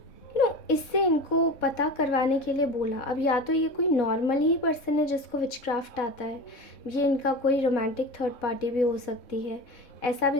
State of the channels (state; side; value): late; right; 3.7 ms